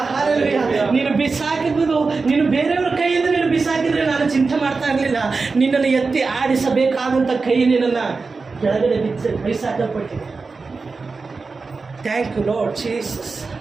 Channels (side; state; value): left; quieter; 4.3 dB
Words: ಹಲ್ಲೆಲೂಯಾ. ನೀನು ಬಿಸಾಕಿದ್ದು ನೀನು ಬೇರೆಯವರ ಕೈಯಿಂದ ನೀನು ಬಿಸಾಕಿದ್ರೆ ನಾನು ಚಿಂತೆ ಮಾಡ್ತಾ ಇರಲಿಲ್ಲ. ನಿನ್ನನ್ನು ಎತ್ತಿ ಆಡಿಸಬೇಕಾದಂಥ ಕೈ ನಿನ್ನನ್ನು ಕೆಳಗಡೆ ಬಿಸಾಕಲ್ಪಟ್ಟಿದೆ. Thank you Lord Jesus.